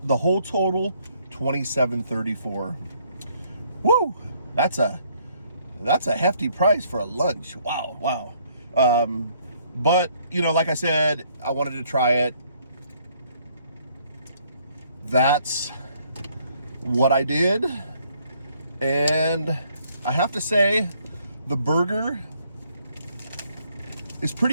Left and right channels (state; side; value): inverted; both; correlation -0.66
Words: total $27.34. Woo! That's a hefty price for a lunch. Wow. But you know, like I said, I wanted to try it. That's what I did, and I have to say the burger is